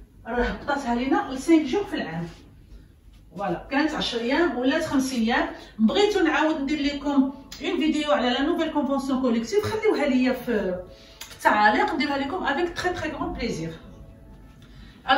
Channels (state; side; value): identical; both; correlation 1.00